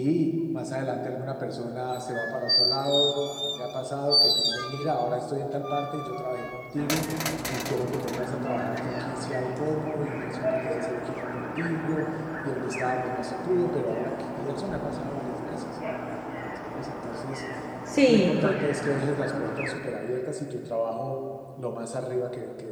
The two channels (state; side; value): identical; both; correlation 1.00